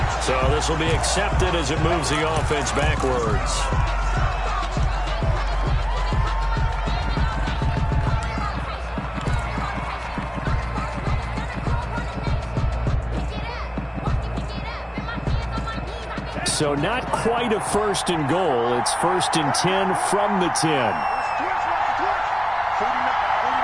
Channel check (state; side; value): identical; both; correlation 1.00